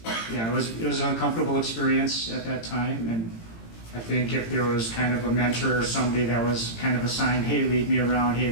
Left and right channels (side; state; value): right; late; 18 ms